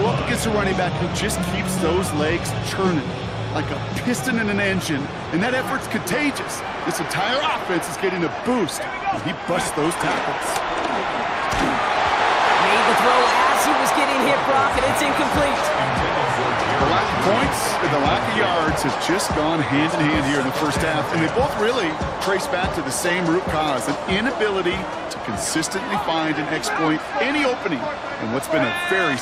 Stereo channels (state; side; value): identical; both; correlation 1.00